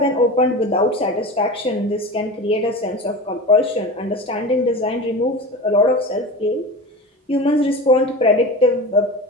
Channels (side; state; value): both; normal; correlation 0.30